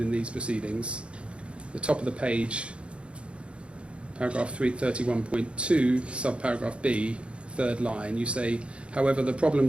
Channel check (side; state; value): left; late; 0.058 ms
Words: in these proceedings. The top of the page, paragraph 31.2, subparagraph B, third line, you say, however, the problem